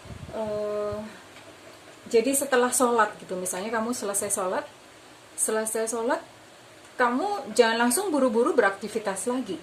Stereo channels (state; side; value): identical; both; correlation 1.00